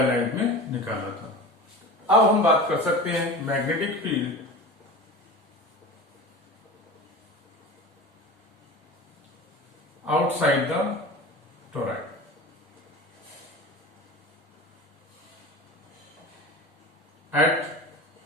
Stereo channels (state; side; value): normal; both; correlation 0.32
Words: में निकाला था। अब हम बात कर सकते हैं magnetic field outside the toroid। At